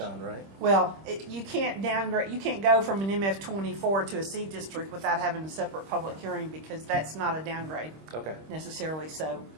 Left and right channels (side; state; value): left; late; 26 ms